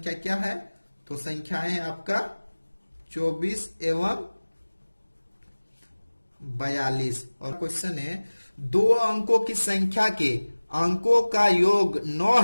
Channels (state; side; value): inverted; both; correlation -1.00